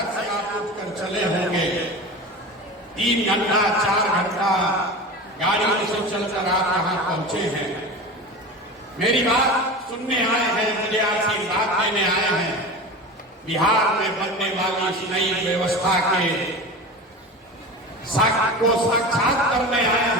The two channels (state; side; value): normal; both; correlation 0.30